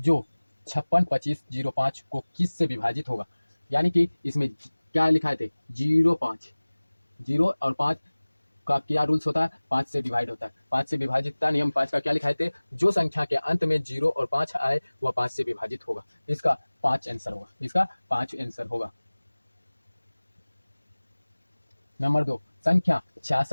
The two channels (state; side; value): inverted; both; correlation -1.00